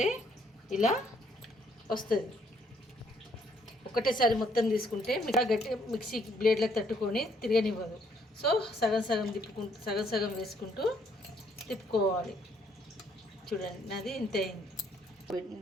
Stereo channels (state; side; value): normal; both; correlation 0.68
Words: ఇలా వస్తుంది. ఒకటేసారి మొత్తం తీసుకుంటే గట్టి మిక్సీ బ్లేడ్లకు తట్టుకొని తిరగనివ్వదు. సో సగం సగం వేసుకుంటూ తిప్పుకోవాలి. చూడండి, నాది ఇంత అయింది.